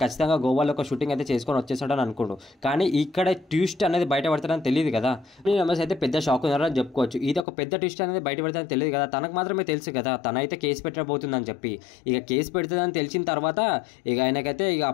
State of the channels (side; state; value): right; drops out; at 7.5 s